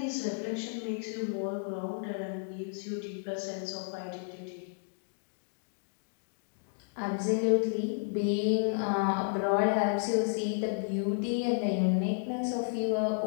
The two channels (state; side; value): silent; right; digital silence